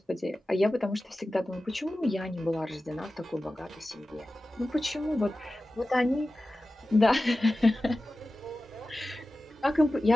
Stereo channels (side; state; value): both; normal; correlation 0.95